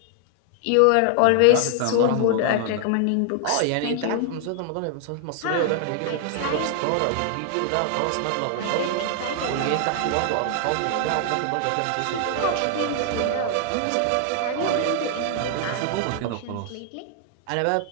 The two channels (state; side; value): different; both; correlation 0.00